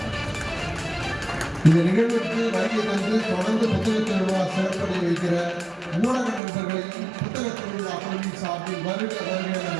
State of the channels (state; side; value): drops out; left; at 6.4 s